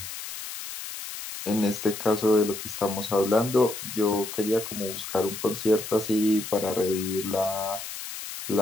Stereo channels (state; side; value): noise; left; hiss, 9 dB below the sound